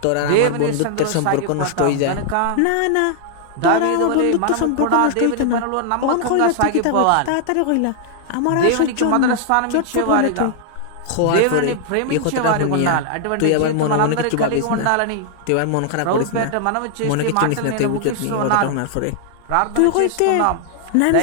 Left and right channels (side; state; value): both; different; correlation -0.01